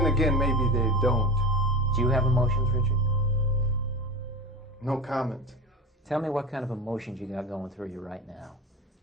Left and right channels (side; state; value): both; normal; correlation 0.28